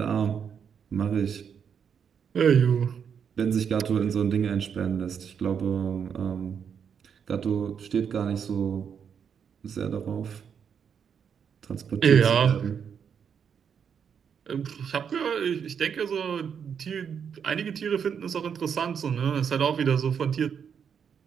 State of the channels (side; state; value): left; quieter; 7.3 dB